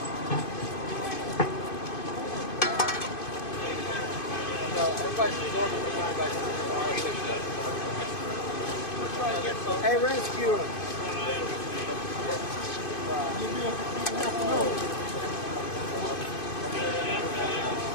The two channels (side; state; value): right; late; 2.5 ms